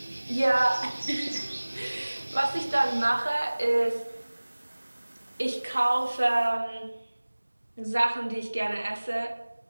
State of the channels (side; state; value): both; inverted; correlation -1.00